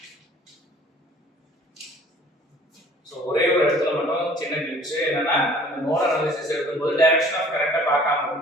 சோ ஒரே ஒரு இடத்துல மட்டும் சின்ன கிளிப்ஸ் என்னன்னா இந்த நோட் அனாலிசிஸ் எடுக்கும்போது டைரக்ஷன் ஆஃப் கரண்ட பார்க்காம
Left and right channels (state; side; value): normal; both; correlation 0.52